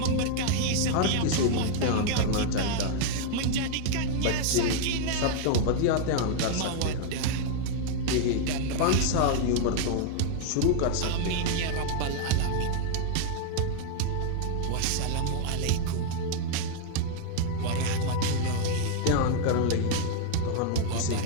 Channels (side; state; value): both; different; correlation 0.00